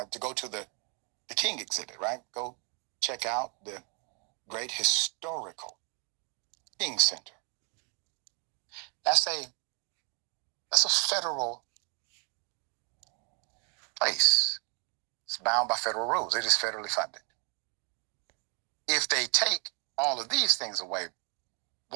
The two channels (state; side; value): quieter; left; 35.6 dB